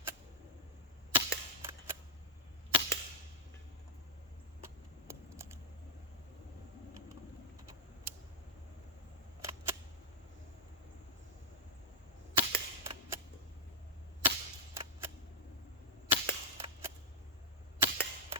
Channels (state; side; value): normal; both; correlation -0.10